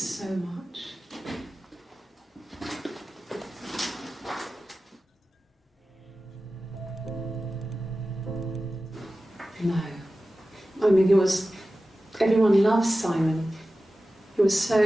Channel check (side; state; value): both; normal; correlation 0.95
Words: much. No. I mean, everyone loves Simon. He was